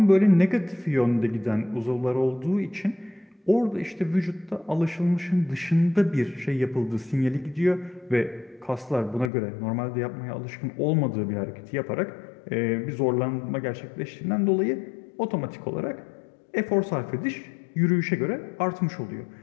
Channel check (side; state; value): right; drops out; at 9.3 s